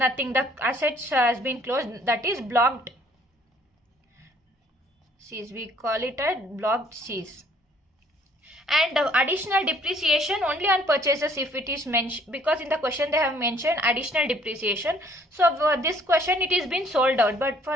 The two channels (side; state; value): both; normal; correlation 0.60